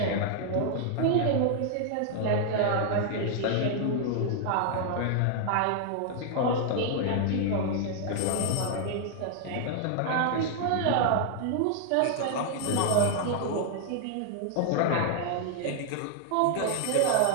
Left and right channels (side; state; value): both; different; correlation 0.00